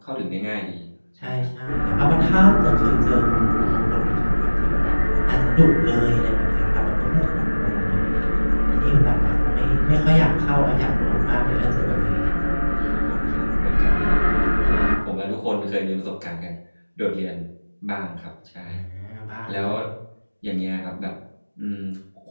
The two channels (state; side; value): inverted; both; correlation -1.00